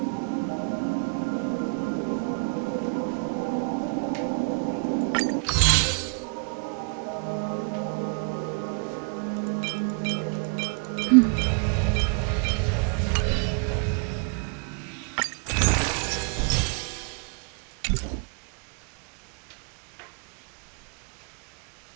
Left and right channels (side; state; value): left; quieter; 36.9 dB